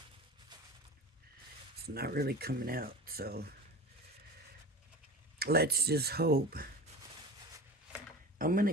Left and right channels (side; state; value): both; normal; correlation 0.33